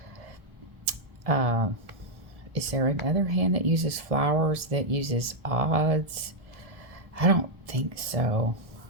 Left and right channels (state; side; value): late; left; 1.7 ms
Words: Is there another hand that uses flowers that uses odds? I don't think so.